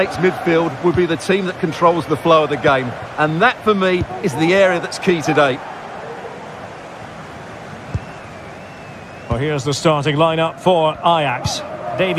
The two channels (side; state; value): both; identical; correlation 1.00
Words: midfield will be the team that controls the flow of the game. And that, for me, is the area that's key today. Well, here's the starting lineup for Ajax.